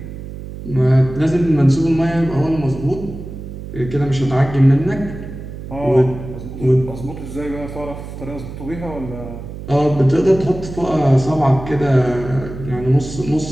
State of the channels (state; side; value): noise; right; hum, 11 dB below the sound